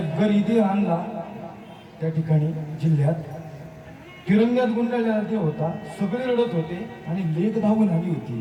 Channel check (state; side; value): identical; both; correlation 1.00